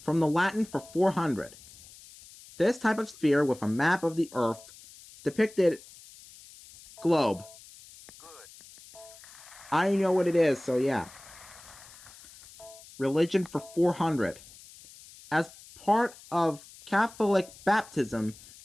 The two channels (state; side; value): noise; left; hiss, 21 dB below the sound